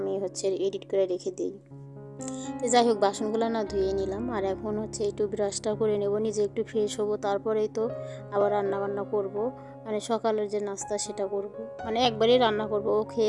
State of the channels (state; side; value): identical; both; correlation 1.00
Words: হচ্ছে এডিট করে রেখে দিই। তো যাই হোক, বাসনগুলো না ধুয়ে নিলাম, আর এখন হচ্ছে একটু ব্রাশটা করে নেব, নিজে একটু ফ্রেশ হবো, তারপরেই তো আবার রান্না বান্না করব। মানে সকালের যে নাস্তা সেটা করব, মানে একবারেই রান্না করব, ও